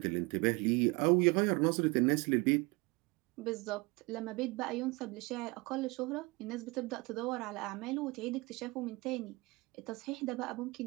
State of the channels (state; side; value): quieter; left; 25.1 dB